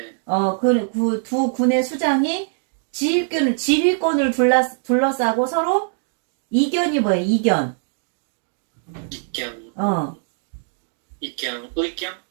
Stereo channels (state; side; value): silent; left; digital silence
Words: 두 군의 수장이 지휘권을 둘러싸고 서로 이견이 뭐예요? 이견. 의견?